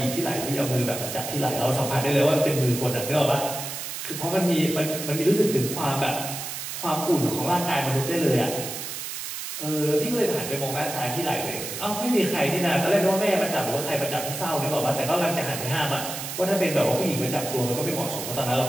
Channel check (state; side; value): noise; right; hiss, 7 dB below the sound